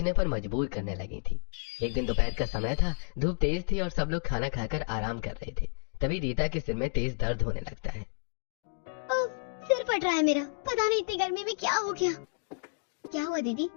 पर मजबूर करने लगी थी। एक दिन दोपहर का समय था, धूप तेज थी और सब लोग खाना खाकर आराम कर रहे थे। तभी रीता के सिर में तेज दर्द होने लगता है। सिर फट रहा है मेरा, पता नहीं इतनी गर्मी में क्या हो गया। क्या हुआ दीदी,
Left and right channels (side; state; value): right; silent; digital silence